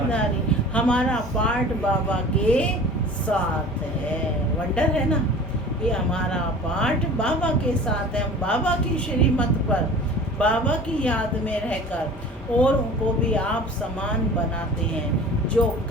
हमारा पाठ बाबा के साथ है। वंडर है ना, ये हमारा पाठ बाबा के साथ है। हम बाबा की श्रीमत पर, बाबा की याद में रहकर और उनको भी आप समान बनाते हैं। जो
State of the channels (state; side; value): normal; both; correlation 0.41